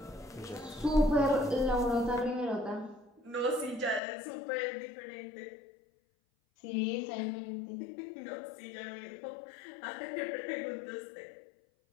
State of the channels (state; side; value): drops out; right; at 4.0 s